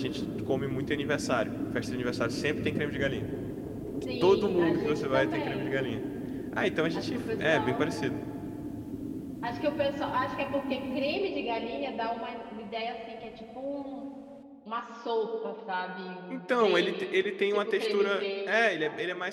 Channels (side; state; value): both; identical; correlation 1.00